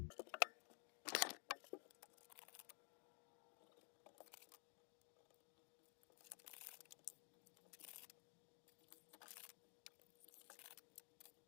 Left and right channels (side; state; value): right; quieter; 36.0 dB